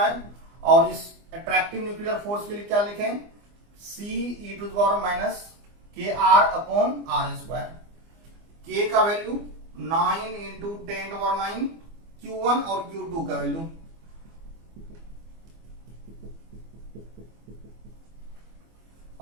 और इस अट्रैक्टिव न्यूक्लियर फोर्स के लिए क्या लिखें, C e to the power minus K R upon R square. K का value 9 into 10 to power 9, Q1 और Q2 का वैल्यू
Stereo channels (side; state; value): left; late; 24 ms